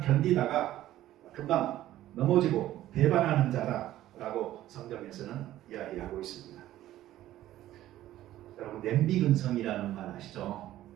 금방 넘어지고 배반하는 자다라고 성경에서는 이야기하고 있습니다. 여러분 냄비근성이라는 말 아시죠?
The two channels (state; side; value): quieter; left; 13.9 dB